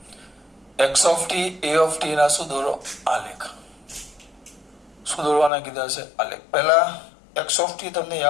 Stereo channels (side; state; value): right; drops out; at 5.5 s